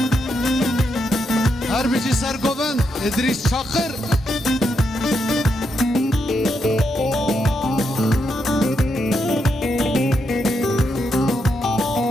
هر بيجي سرقوبن ادريس شاقر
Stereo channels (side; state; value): both; normal; correlation 0.81